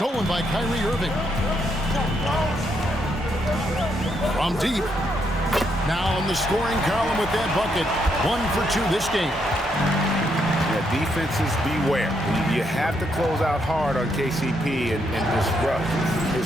by Kyrie Irving. From deep. Now in the scoring column with that bucket. 1 for 2 this game. Yeah, defenses beware. You have to close out hard on KCP and disrupt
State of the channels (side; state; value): both; normal; correlation 0.77